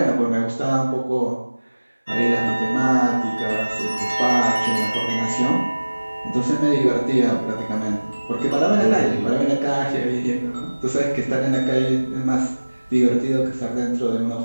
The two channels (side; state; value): both; inverted; correlation -1.00